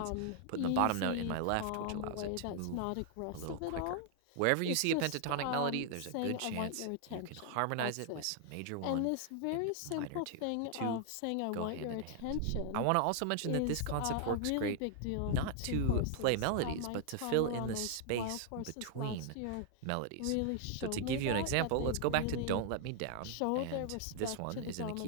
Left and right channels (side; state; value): both; different; correlation 0.00